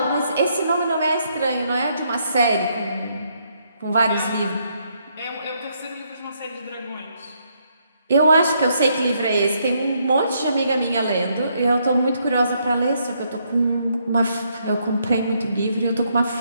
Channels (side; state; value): both; inverted; correlation -0.74